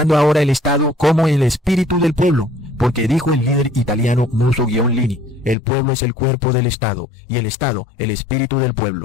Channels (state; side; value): drops out; right; at 5.6 s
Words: ahora el Estado como el espíritu del pueblo. Porque dijo el líder italiano Mussolini: el pueblo es el cuerpo del Estado y el Estado el espíritu del